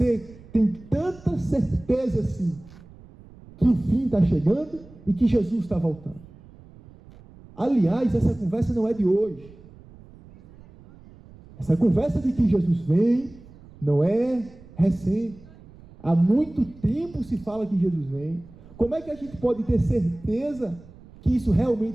tem tanta certeza assim, que o fim está chegando e que Jesus está voltando? Aliás, essa conversa não é de hoje. Essa conversa de que Jesus vem não é recente. Há muito tempo se fala que Jesus vem. Como é que a gente pode ter certeza que isso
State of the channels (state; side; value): noise; right; rumble, 22 dB below the sound